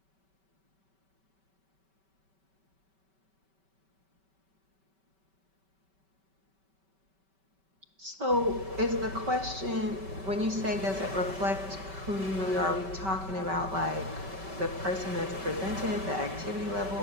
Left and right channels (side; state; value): left; late; 5.2 ms